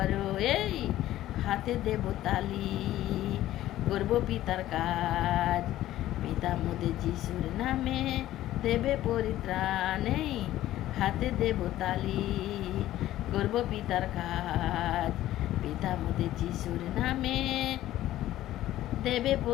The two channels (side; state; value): right; quieter; 14.2 dB